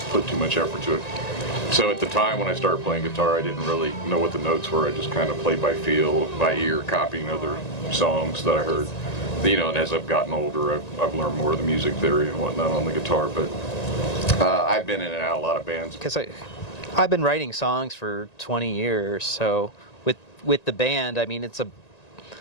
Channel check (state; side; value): late; right; 1.9 ms